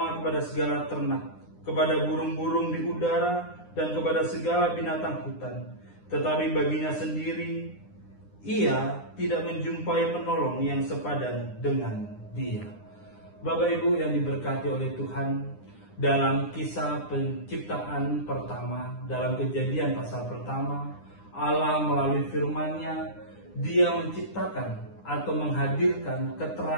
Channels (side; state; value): right; late; 9.8 ms